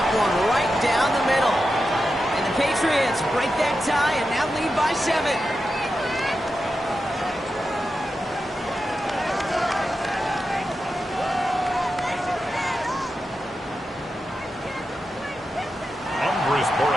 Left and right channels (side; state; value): both; normal; correlation 0.89